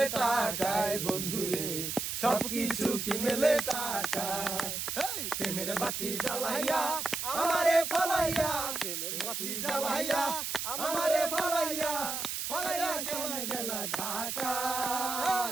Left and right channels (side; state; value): right; noise; hiss, 3 dB below the sound